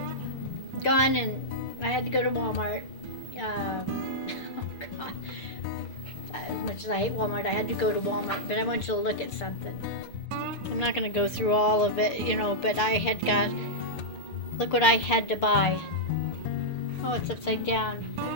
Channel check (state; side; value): late; right; 6.7 ms